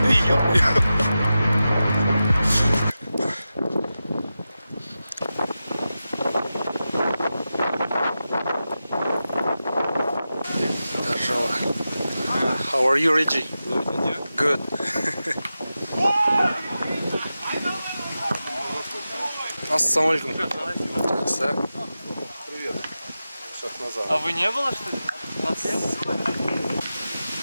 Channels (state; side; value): inverted; both; correlation -0.92